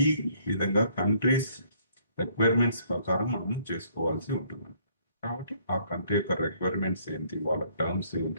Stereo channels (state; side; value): inverted; both; correlation -0.64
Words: ఈ విధంగా కంట్రీస్ రిక్వైర్మెంట్స్ ప్రకారం మనం చేసుకోవాల్సి ఉంటుంది. కాబట్టి ఆ కంట్రీ యొక్క రిక్వైర్మెంట్స్ ఏంటి, వాళ్ళ టర్మ్స్